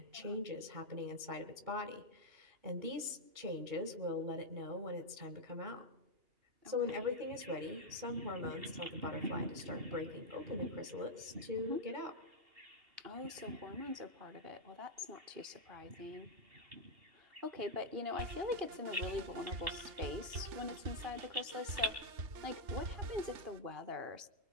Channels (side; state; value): left; late; 2.7 ms